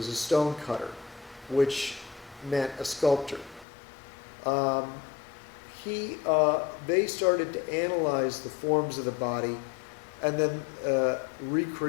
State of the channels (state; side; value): drops out; right; at 3.7 s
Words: a stone cutter, which meant a sculptor. They started to analyze the forms of the body and then